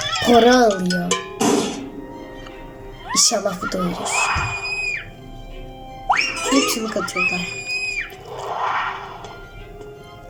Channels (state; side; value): identical; both; correlation 1.00